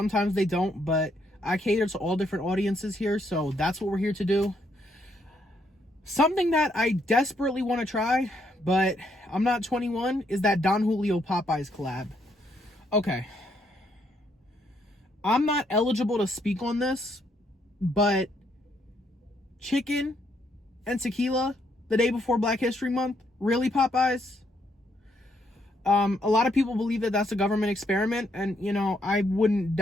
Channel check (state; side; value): normal; both; correlation 0.73